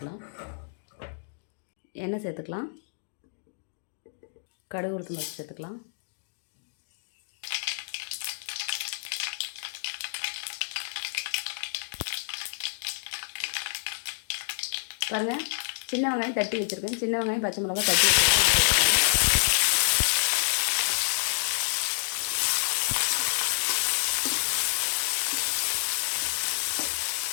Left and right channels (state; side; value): silent; right; digital silence